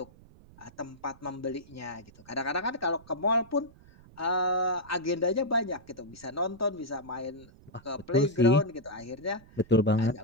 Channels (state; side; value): noise; right; rumble, 23 dB below the sound